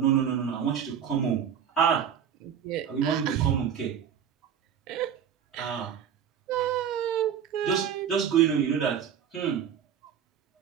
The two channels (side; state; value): left; quieter; 8.3 dB